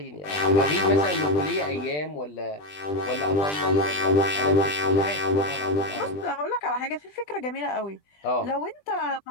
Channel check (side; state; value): right; late; 20 ms